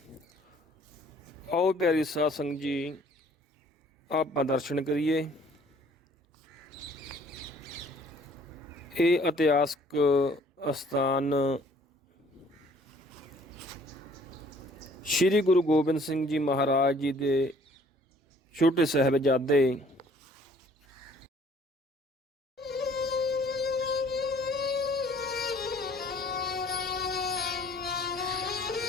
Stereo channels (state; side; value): normal; both; correlation 0.57